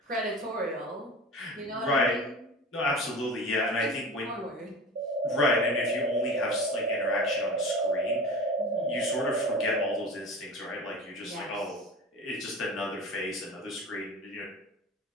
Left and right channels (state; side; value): normal; both; correlation 0.34